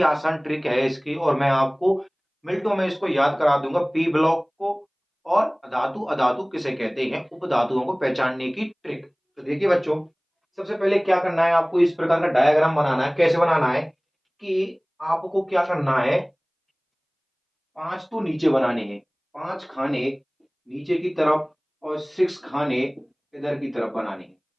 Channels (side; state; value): both; identical; correlation 1.00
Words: आसान ट्रिक है इसकी और मैं आपको मिनटों में इसको याद करा दूंगा। पी ब्लॉक को और धातु अधातु किसे कहते हैं, उपधातुओं को पहचानने की ट्रिक। तो देखिए बच्चों, सबसे पहले क्या करना है, आपको इस प्रकार का डायग्राम बनाना है। कैसे बनाना है कि आपको क्या करना है, 5 तो नीचे बनाने हैं, 5 खाने नीचे की तरफ और 6 खाने इधर की तरफ बनाने हैं।